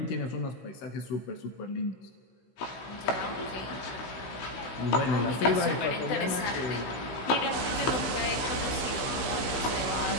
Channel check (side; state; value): right; late; 15 ms